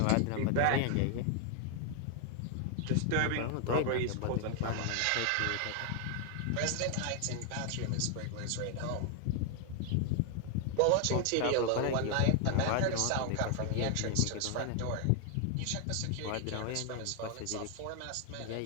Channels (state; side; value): different; both; correlation 0.00